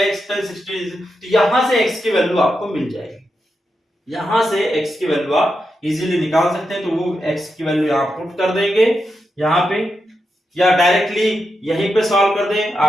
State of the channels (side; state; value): both; normal; correlation 0.86